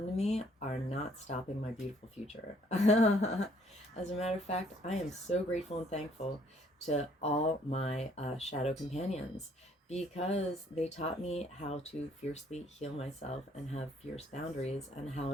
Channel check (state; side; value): normal; both; correlation 0.63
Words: to me are not stopping my beautiful future. As a matter of fact, I am so grateful and thankful to all my shadow companions, because they taught me how to fiercely heal myself and have fierce boundaries, and how